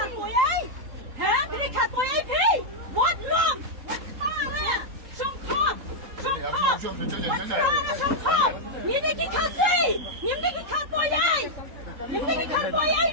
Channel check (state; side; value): late; left; 3.8 ms